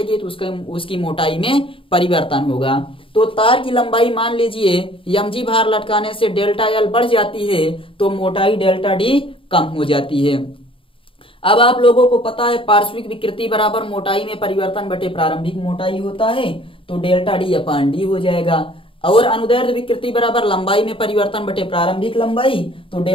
तो उसकी मोटाई में परिवर्तन होगा। तो तार की लंबाई मान लीजिए mg भार लटकाने से डेल्टा एल बढ़ जाती है तो मोटाई डेल्टा डी कम हो जाती है। अब आप लोगों को पता है पार्श्विक विकृति बराबर मोटाई में परिवर्तन बटे प्रारंभिक मोटाई होता है, तो डेल्टा डी अपान डी हो जाएगा। और अनुदैर्ध्य विकृति बराबर लंबाई में परिवर्तन बटे प्रारंभिक लंबाई, तो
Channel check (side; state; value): right; late; 0.26 ms